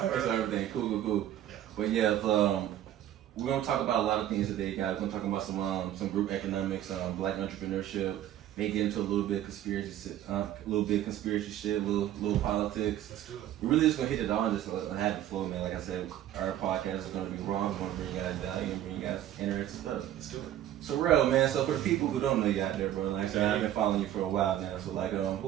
So everything cool. Yeah. But yeah, we're gonna talk about a lot of things today, guys. We're gonna talk about some group economics, black entrepreneurship. May get into a little bit of conspiracy shit, little politics. Let's do it. We're really just gonna hit it all and just have the flow, man. Like I said, our podcast is gonna be raw. We're gonna bring you guys value and bring you guys interesting stuff. Let's do it. So Rell, man. So for the people who don't know you out there, bro, like I said, I've been following you for a while now. So like,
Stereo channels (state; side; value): quieter; left; 12.0 dB